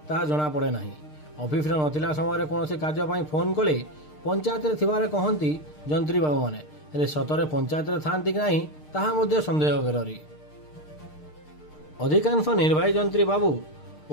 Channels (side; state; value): right; late; 6.6 ms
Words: ताहा जणा पड़े नाही। ऑफिस रे नथिला समय रे कोनोसी कार्य पई फोन कले पंचायत रे थिबारे कहंती जंत्री बाबू माने, हेले सतरे पंचायत रे थांती कि नाही ताहा मध्ये संदेह करेरी। अधिकांश निर्वाही जंत्री बाबू